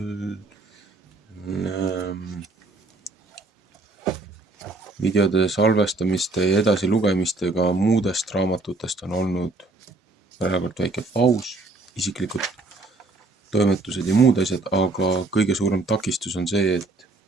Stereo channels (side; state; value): left; quieter; 3.3 dB